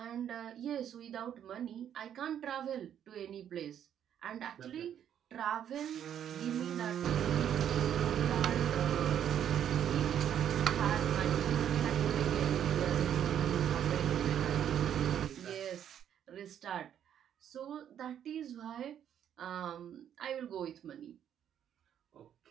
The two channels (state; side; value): quieter; left; 9.6 dB